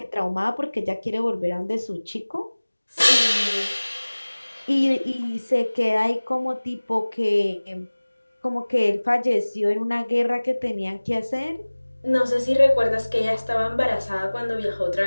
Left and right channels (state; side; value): inverted; both; correlation -1.00